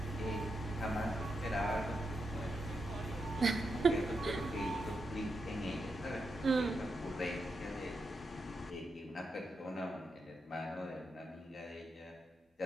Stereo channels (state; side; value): normal; both; correlation 0.85